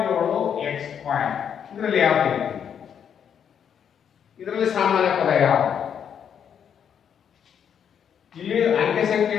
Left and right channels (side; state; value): right; quieter; 8.2 dB